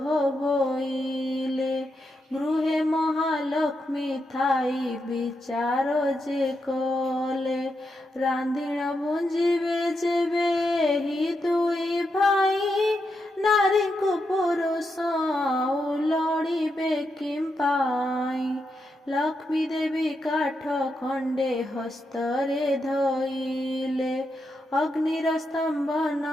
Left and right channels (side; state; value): both; normal; correlation 0.84